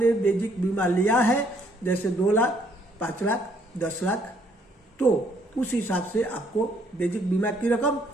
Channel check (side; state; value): both; normal; correlation 0.66